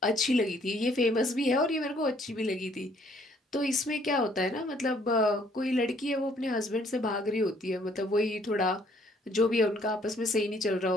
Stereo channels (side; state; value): both; normal; correlation 0.63